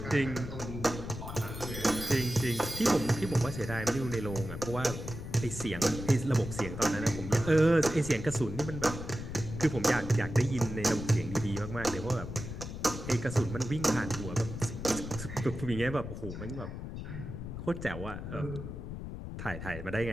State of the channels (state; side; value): noise; left; rumble, 8 dB below the sound